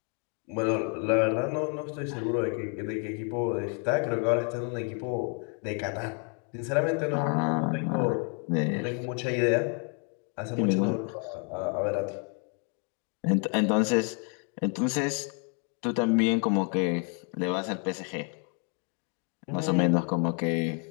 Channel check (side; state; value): right; quieter; 39.6 dB